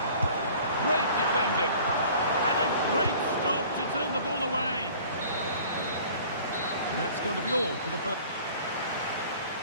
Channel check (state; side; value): inverted; both; correlation -0.48